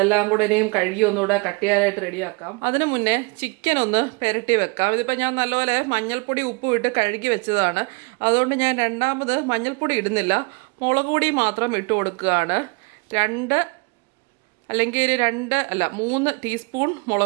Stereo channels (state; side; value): quieter; left; 31.2 dB